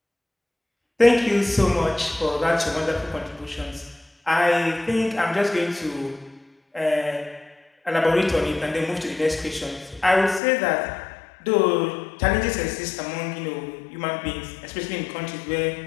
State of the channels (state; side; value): drops out; right; at 10.4 s